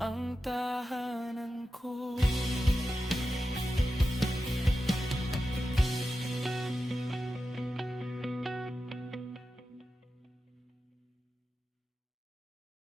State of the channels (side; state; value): both; normal; correlation 0.91